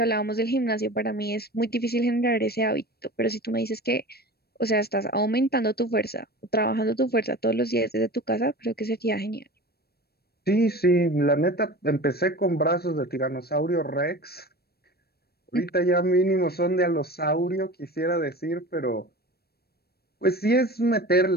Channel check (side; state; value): right; late; 0.46 ms